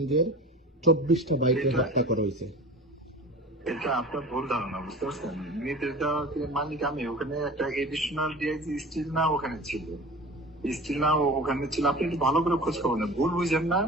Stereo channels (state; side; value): normal; both; correlation 0.37